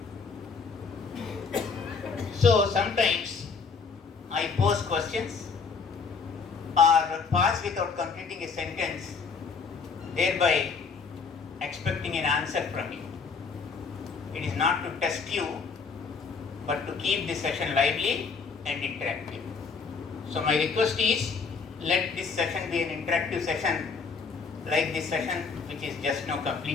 So sometimes I pose questions or pass without completing a sentence, thereby expecting an answer from you. It is not to test you, but to keep the session lively and interactive. So my request is, let this session be an interactive session like this session which is just now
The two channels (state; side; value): quieter; right; 5.2 dB